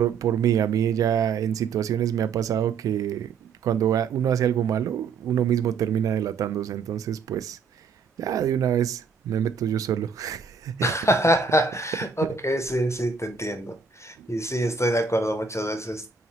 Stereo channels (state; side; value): quieter; left; 5.2 dB